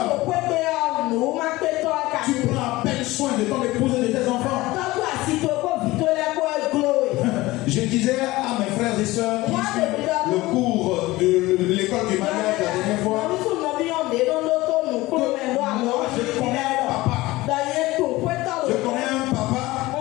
Tu prends à peine soin de ton épouse et de tes enfants. Je disais à mes frères et sœurs qui suivent le cours de l'école du mariage la dernière fois que moi je connais un papa. Je connais un papa.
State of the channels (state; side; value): quieter; right; 19.3 dB